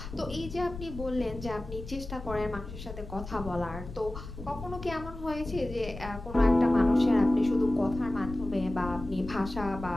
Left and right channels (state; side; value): noise; left; rumble, 11 dB below the sound